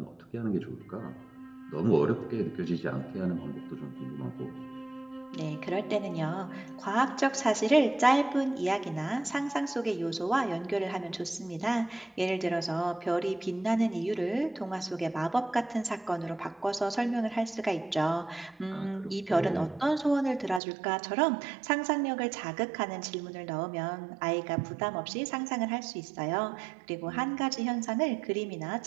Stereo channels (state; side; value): drops out; left; at 20.6 s